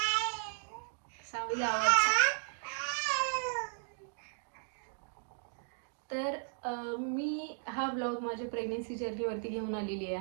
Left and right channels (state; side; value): silent; left; digital silence